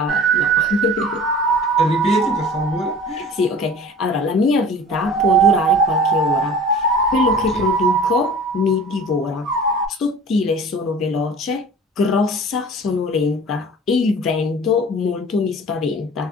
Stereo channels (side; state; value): both; normal; correlation 0.41